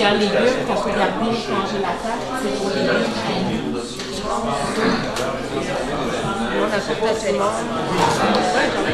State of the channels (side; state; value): both; identical; correlation 1.00